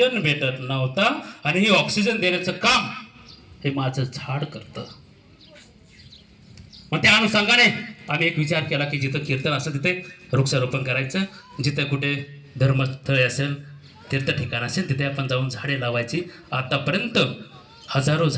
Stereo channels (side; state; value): both; identical; correlation 1.00